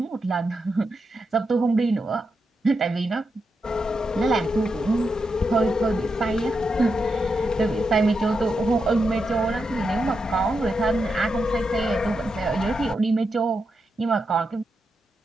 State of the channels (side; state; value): both; normal; correlation 0.85